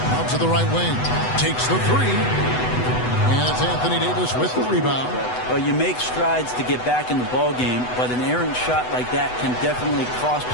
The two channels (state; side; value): late; right; 8.0 ms